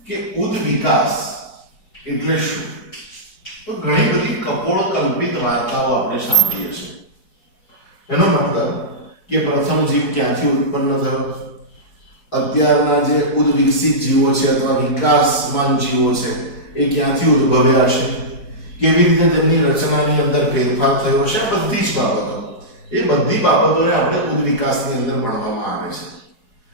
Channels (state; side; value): late; right; 4.7 ms